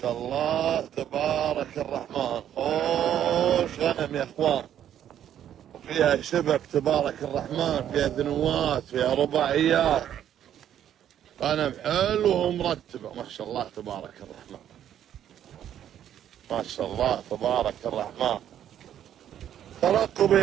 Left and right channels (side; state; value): left; quieter; 10.4 dB